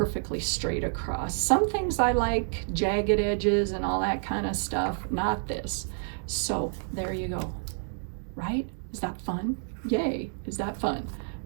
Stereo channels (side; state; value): left; silent; digital silence